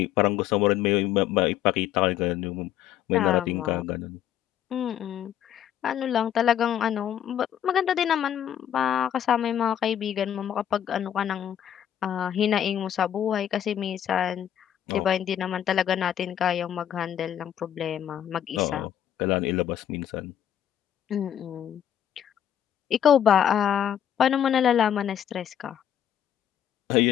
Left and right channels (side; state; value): right; quieter; 10.2 dB